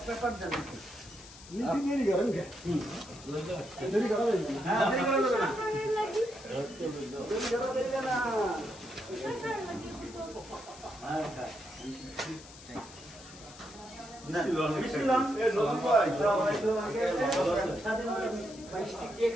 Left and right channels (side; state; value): left; noise; hiss, 18 dB below the sound